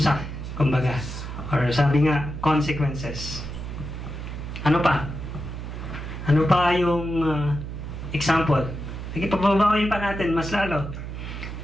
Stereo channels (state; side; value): noise; right; hum, 8 dB below the sound